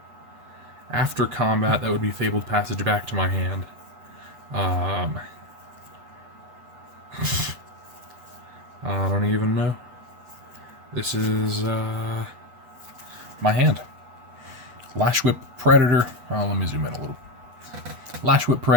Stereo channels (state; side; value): late; left; 8.2 ms